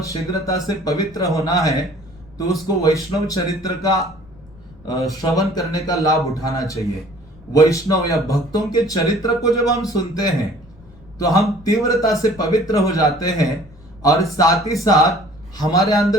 शीघ्रता से पवित्र होना है तो उसको वैष्णव चरित्र का श्रवण करने का लाभ उठाना चाहिए। वैष्णव या भक्तों के चरित्र को जब हम सुनते हैं तो हम तीव्रता से पवित्र हो जाते हैं, और साथ ही साथ हमारे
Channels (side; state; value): left; noise; rumble, 24 dB below the sound